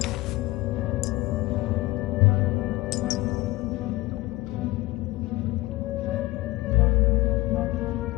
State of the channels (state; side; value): quieter; right; 19.9 dB